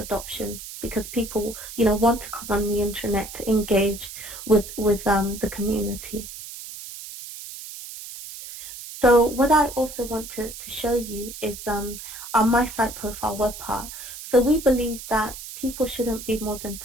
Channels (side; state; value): right; noise; hiss, 12 dB below the sound